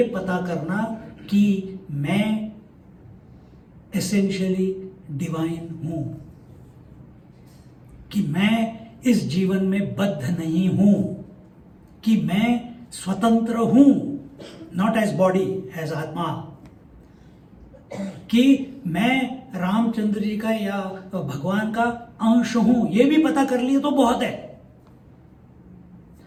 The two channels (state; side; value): identical; both; correlation 1.00